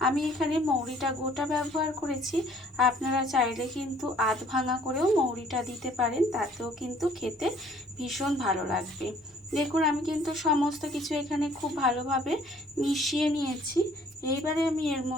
আমি এখানে মৌরিটা গোটা ব্যবহার করেছি, আপনারা চাইলে কিন্তু আধ ভাঙা করেও মৌরিটা দিতে পারেন, তাতেও কিন্তু খেতে ভীষণ ভালো লাগবে। দেখুন আমি কিন্তু সমস্ত কিছু এখানে খুব ভালোভাবে মিশিয়ে নিয়েছি। এইবারে আমি এর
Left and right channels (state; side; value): normal; both; correlation 0.58